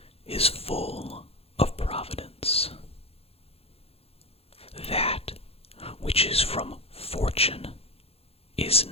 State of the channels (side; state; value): right; late; 0.29 ms